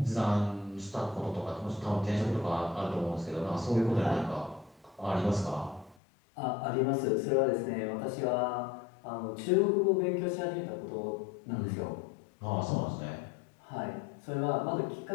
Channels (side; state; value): right; drops out; at 6.0 s